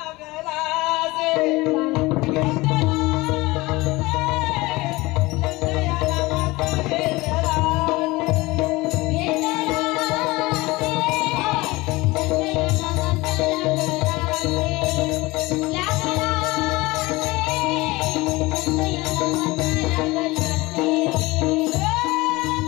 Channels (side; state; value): right; quieter; 21.5 dB